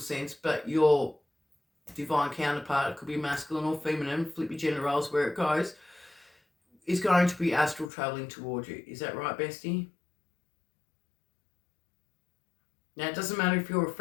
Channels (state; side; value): drops out; right; at 7.9 s